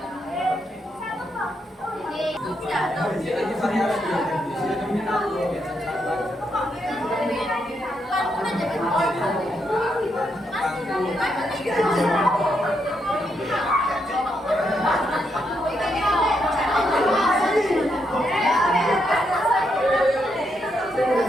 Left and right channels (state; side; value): normal; both; correlation 0.79